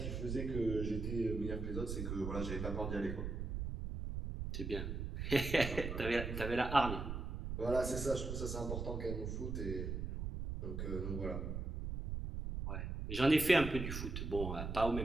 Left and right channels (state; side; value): noise; right; rumble, 4 dB below the sound